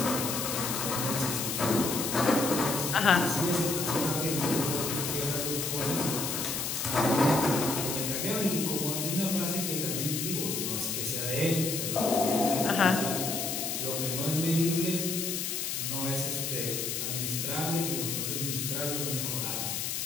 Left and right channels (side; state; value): left; noise; hiss, 2 dB below the sound